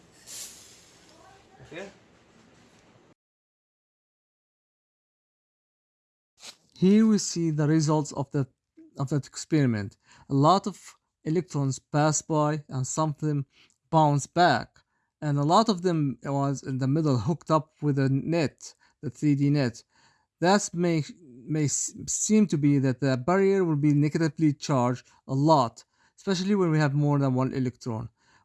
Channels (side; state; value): both; identical; correlation 1.00